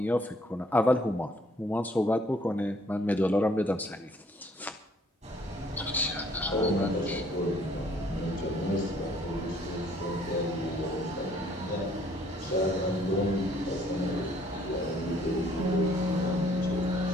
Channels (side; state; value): both; normal; correlation 0.62